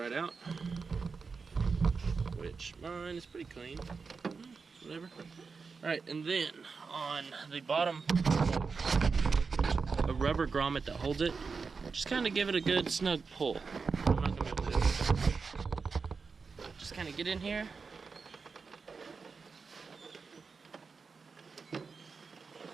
out, which mine is pretty clean. Whatever. Alright, and then on the bottom, a rubber grommet that holds it, just kind of give it a good snug pull. I'm not going to be able to do it. Just kind of get in here.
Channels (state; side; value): quieter; left; 4.9 dB